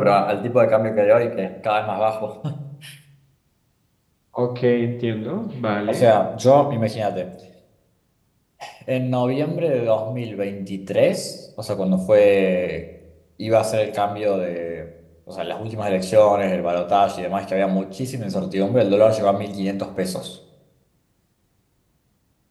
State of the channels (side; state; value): both; identical; correlation 1.00